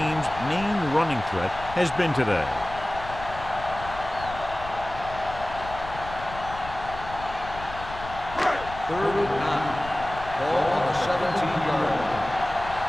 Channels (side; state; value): left; noise; rumble, 13 dB below the sound